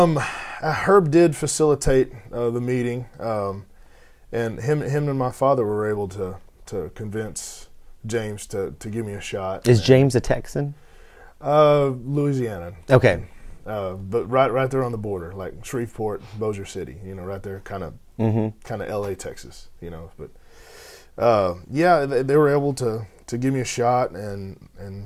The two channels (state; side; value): identical; both; correlation 1.00